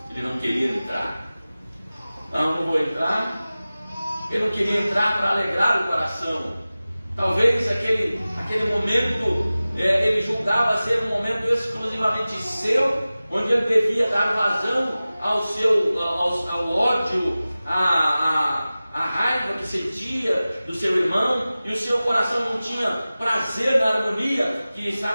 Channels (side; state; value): both; inverted; correlation -0.97